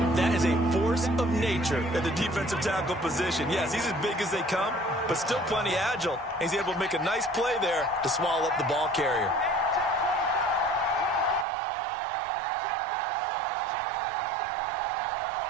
that is a force of nature at the defensive tackle position. Yes, he's as big as they come, but still plenty agile. He's able to make a nice play there to swallow up the ball carrier.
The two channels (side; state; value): left; drops out; at 11.5 s